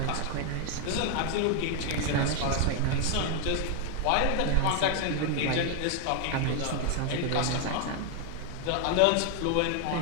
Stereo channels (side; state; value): both; different; correlation 0.00